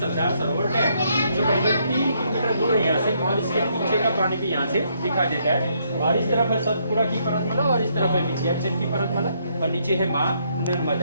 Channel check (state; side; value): inverted; both; correlation -0.72